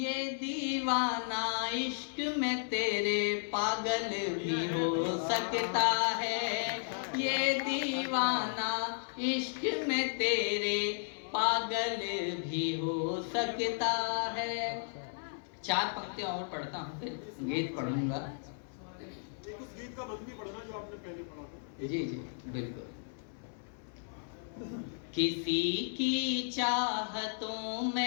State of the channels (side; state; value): right; silent; 55 dB below the other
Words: दीवाना इश्क में तेरे पागल भी हो सकता है, ये दीवाना इश्क में तेरे पागल भी हो सकता है। 4 पंक्तियां और पढ़ता हूँ, फिर गीत पढ़ूंगा। उस गीत का बंद भी पढ़ना जो आपने पहले पढ़ा था। जी जी बिल्कुल। किसी की चाहतों